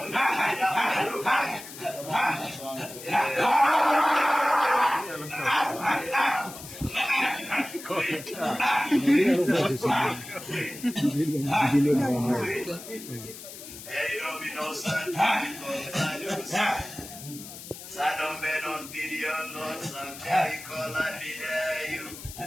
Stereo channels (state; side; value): noise; left; hiss, 14 dB below the sound